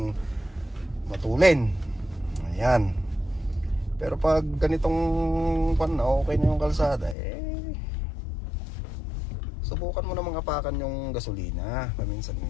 matulin. Ayan. Pero pag ganitong okay na yung kalsada, subukan mo namang apakan yung gasolina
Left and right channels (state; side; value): drops out; right; at 7.2 s